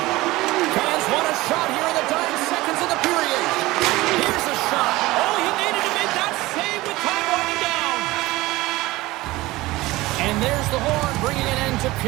Fans want a shot here in the dying seconds of the period. Here's a shot. Oh, he needed to make that save with time winding down. And there's the horn, bringing an end to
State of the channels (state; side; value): quieter; left; 19.2 dB